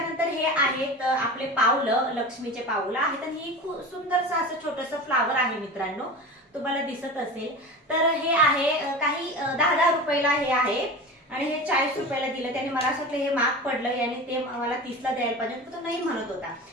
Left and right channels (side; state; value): both; normal; correlation 0.31